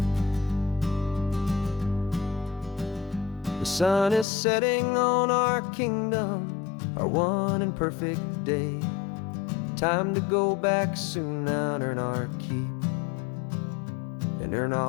The sun is setting on our kingdom, our one and perfect day. Time to go back soon now and earn our keep and earn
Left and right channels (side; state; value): right; drops out; at 4.2 s